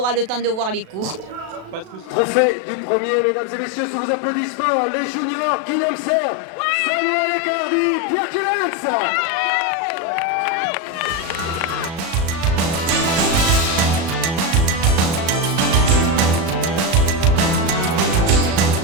le temps de voir les cours. Trophée du premier, mesdames et messieurs, sous vos applaudissements, les juniors, Guillaume Serre, Samuel Ecardi, Pierre Kilens.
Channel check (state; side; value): late; left; 37 ms